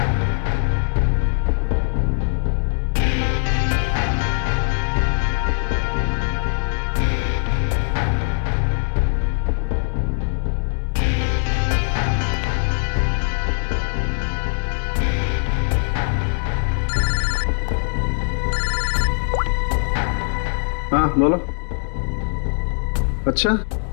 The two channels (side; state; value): right; silent; 65 dB below the other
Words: हाँ बोलो। अच्छा,